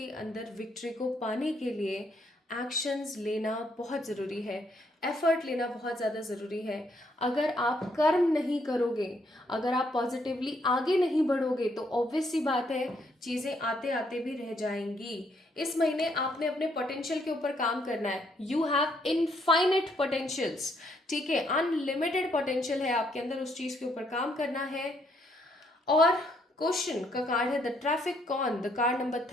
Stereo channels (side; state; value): both; normal; correlation 0.71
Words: अंदर विक्ट्री को पाने के लिए एक्शंस लेना बहुत ज़रूरी है, एफर्ट लेना बहुत ज़्यादा ज़रूरी है। अगर आप कर्म नहीं करोगे, अगर आप पॉजिटिवली आगे नहीं बढ़ोगे, तो ऑब्वियस सी बात है चीज़ें आते आते भी रह जाएंगी। इस महीने आपने अपने पोटेंशियल के ऊपर काम करना है। यू हैव इनफाइनाइट पोटेंशियल्स, ठीक है, अनलिमिटेड पोटेंशियल है आपके अंदर, उस चीज़ के ऊपर काम करना है। और क्वेश्चन का कार्ड है the traffic cone, the card number